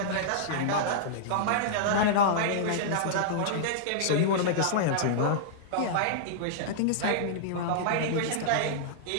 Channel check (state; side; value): different; both; correlation -0.02